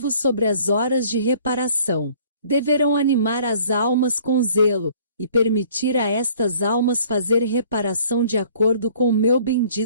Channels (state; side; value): inverted; both; correlation -0.55